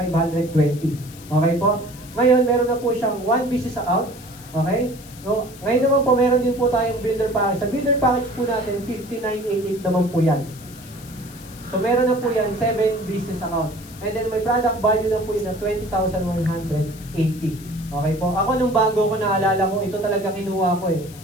Okay po? Ngayon, meron na po siyang 1 business account. Okay? So, ngayon naman po, meron din po tayong builder package. Sa builder package po natin, 5988 naman po yan. So, meron na po yan, 7 business account. And then, may product value na po yun na 20,180. Okay po? Ako, nung bago ko naalala ko, ito talaga kinuha ko eh.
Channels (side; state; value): left; noise; hiss, 19 dB below the sound